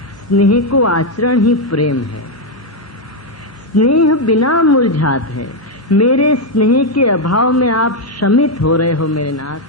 स्नेह को आचरण ही प्रेम है। स्नेह बिना मुरझात है। मेरे स्नेह के अभाव में आप शमित हो रहे हो मेरे नाथ,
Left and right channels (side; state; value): both; normal; correlation 0.02